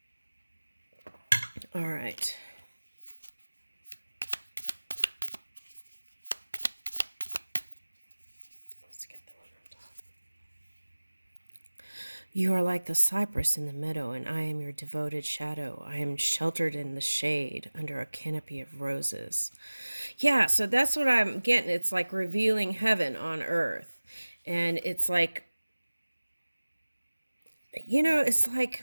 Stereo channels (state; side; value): inverted; both; correlation -1.00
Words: All right. Let's get the one on top. You are like the cypress in the meadow, and I am your devoted shadow. I am sheltered in the shade under a canopy of roses. Yeah, so that's what I'm getting. It's like revealing heaven on earth. And it's like, it's